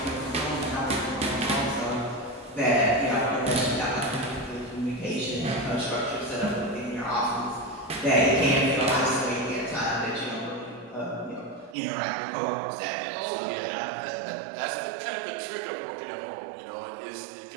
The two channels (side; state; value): left; drops out; at 11.8 s